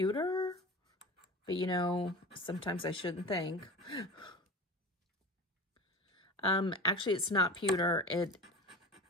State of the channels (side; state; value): both; normal; correlation 0.32